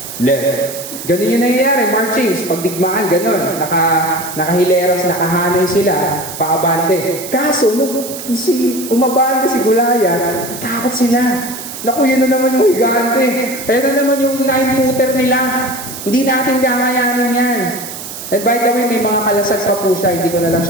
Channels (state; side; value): noise; right; hiss, 10 dB below the sound